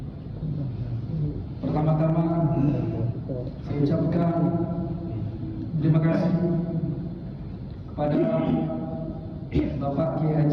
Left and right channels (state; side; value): identical; both; correlation 1.00